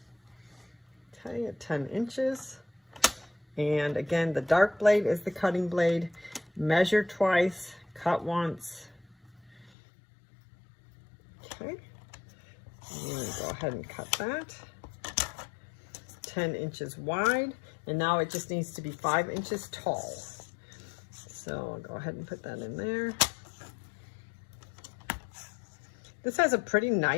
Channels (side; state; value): right; drops out; at 9.7 s